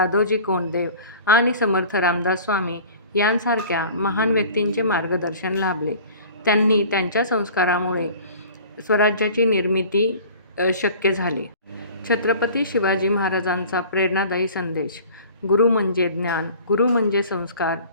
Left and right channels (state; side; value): inverted; both; correlation -0.45